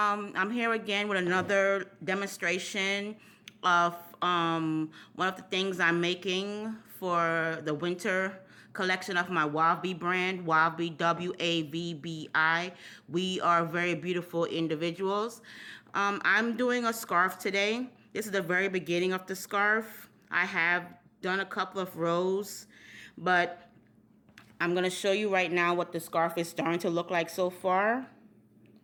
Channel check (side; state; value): both; identical; correlation 1.00